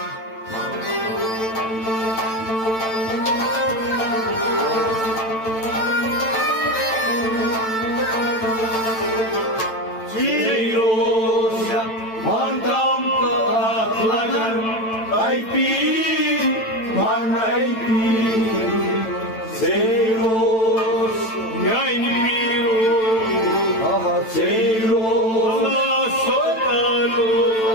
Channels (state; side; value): late; right; 9.0 ms